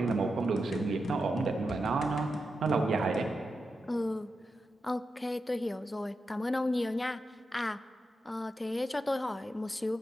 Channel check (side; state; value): both; normal; correlation 0.88